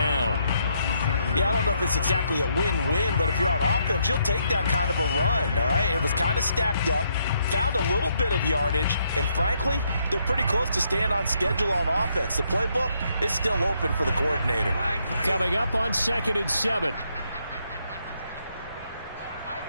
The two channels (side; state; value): both; inverted; correlation -0.74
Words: Yeah, I don't know if it's exactly a win-win, but if you're on offense, you'll take that kind of a run, all right? It was kind of stacked up, found a little bit of yardage, and frankly, they're pretty close to staying on schedule on offense. The playbook is still open for the coordinator. Coming up on 2nd and 7.